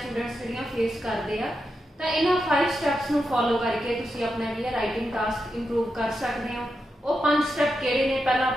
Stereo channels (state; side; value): normal; both; correlation 0.87